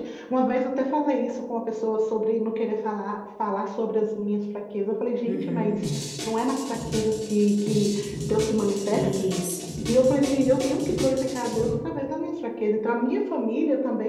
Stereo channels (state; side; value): identical; both; correlation 1.00